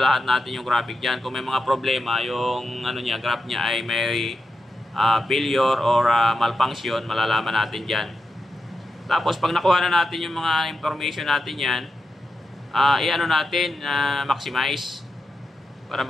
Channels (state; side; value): normal; both; correlation 0.88